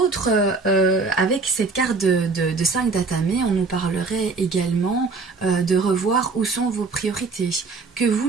avec cette carte de 5 d'Atame, on nous parlerait également de revoir où sont vos priorités. Que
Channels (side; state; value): left; quieter; 4.2 dB